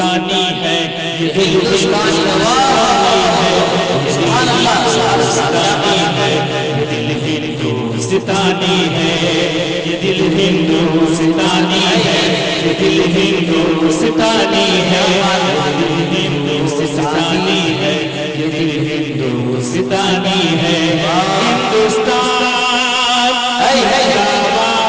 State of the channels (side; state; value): both; identical; correlation 1.00